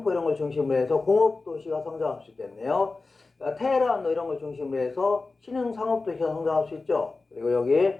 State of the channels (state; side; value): quieter; right; 3.7 dB